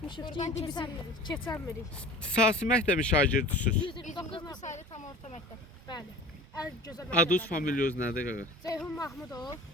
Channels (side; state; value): both; normal; correlation 0.40